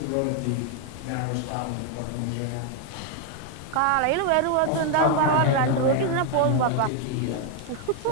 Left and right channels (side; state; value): both; different; correlation 0.00